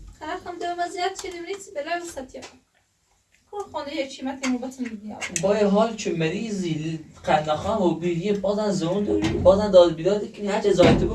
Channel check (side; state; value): both; identical; correlation 1.00